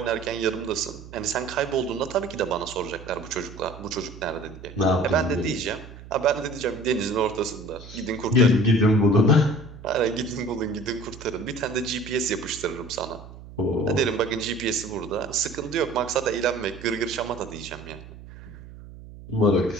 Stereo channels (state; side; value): noise; right; hum, 16 dB below the sound